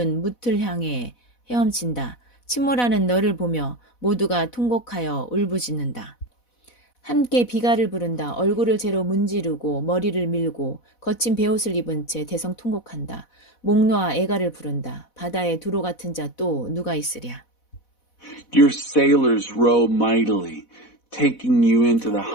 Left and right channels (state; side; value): late; right; 4.1 ms